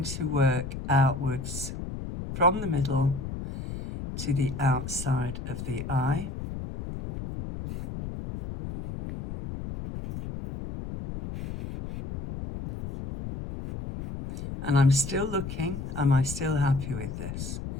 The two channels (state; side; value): noise; left; rumble, 7 dB below the sound